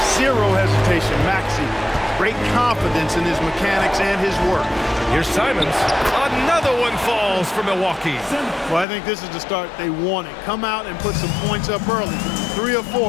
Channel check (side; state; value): right; drops out; at 8.8 s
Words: Zero hesitation, Maxey. Great confidence in his mechanics and his work. Here's Simons. Another one falls for Milwaukee. Well, I think this is the start they wanted. Come out and put some points up early. 3 or